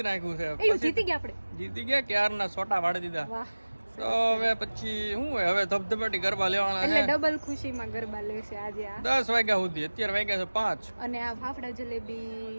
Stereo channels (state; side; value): inverted; both; correlation -1.00